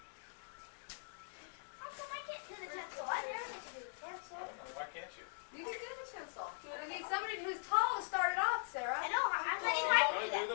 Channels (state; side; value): silent; right; 50 dB below the other